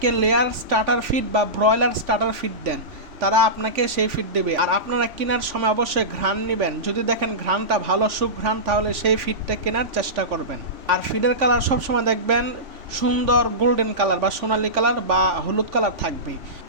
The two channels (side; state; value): left; late; 3.5 ms